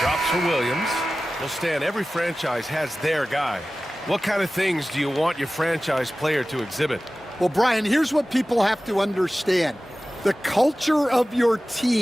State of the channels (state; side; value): normal; both; correlation 0.96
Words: for Williams. Well, Stan, every franchise has their guy. What kind of things do you want your franchise player to exhibit? Well, Brian, here's what people have to understand. The culture of your